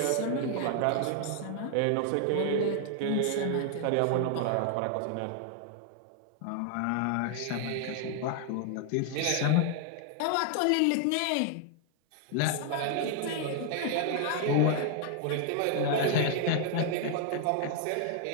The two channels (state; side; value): different; both; correlation 0.00